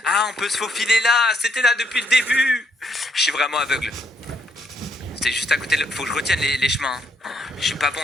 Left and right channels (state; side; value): normal; both; correlation 0.73